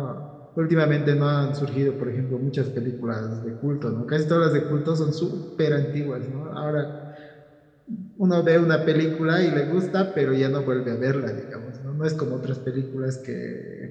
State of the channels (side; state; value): both; identical; correlation 1.00